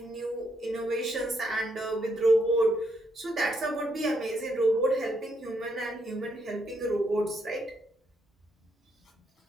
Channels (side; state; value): both; normal; correlation 0.76